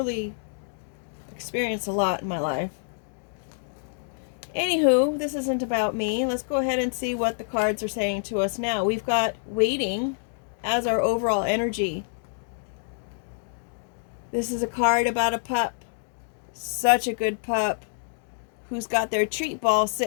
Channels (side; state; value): right; silent; digital silence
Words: experienced a lot in my life. Anywho, this isn't about me. Let's go ahead and see what the cards are saying to us now. We've got waiting as our overall energy. This is a card about a pup. Such a good pup who's got their treat ball